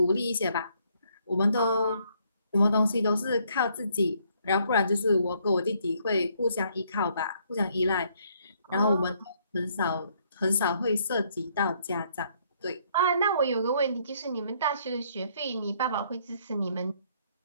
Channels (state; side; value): inverted; both; correlation -0.68